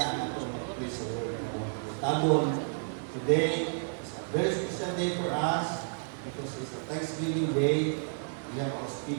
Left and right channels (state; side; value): silent; left; digital silence